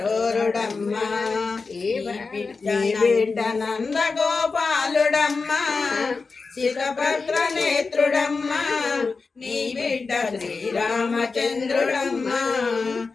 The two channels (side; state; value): right; quieter; 4.4 dB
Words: ఈ బిడ్డ నంద గోపాలుడమ్మ శిఖపత్ర నేత్రుడమ్మ నీ బిడ్డ శ్రీరామచంద్రుడమ్మ